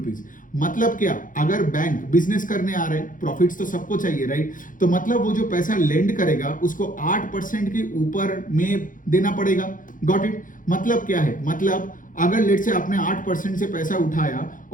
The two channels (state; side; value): late; right; 0.39 ms